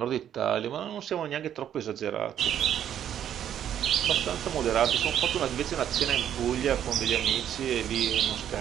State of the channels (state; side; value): quieter; left; 10.0 dB